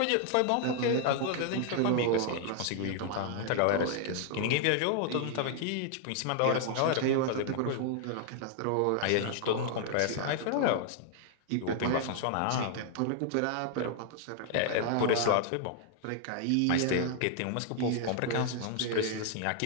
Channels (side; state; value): both; different; correlation 0.00